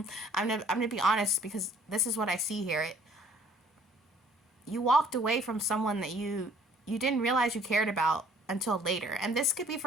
I'm gonna be honest, because this is what I see here. You walked away from someone that you didn't realize you cared about until later. And this could be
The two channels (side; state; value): both; normal; correlation 0.57